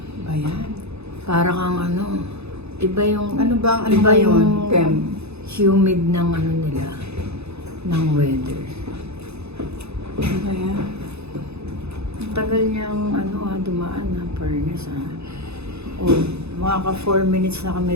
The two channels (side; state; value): left; late; 0.80 ms